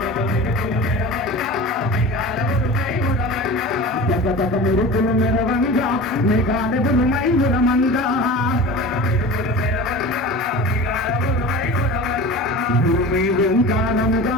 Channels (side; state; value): both; normal; correlation 0.34